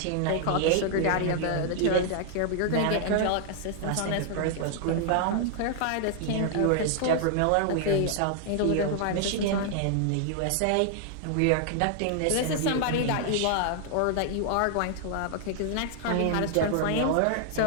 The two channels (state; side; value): different; both; correlation 0.00